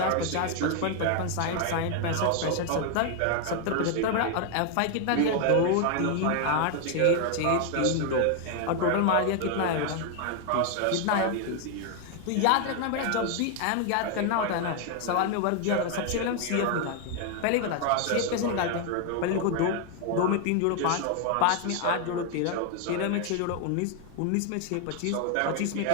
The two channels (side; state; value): both; different; correlation 0.01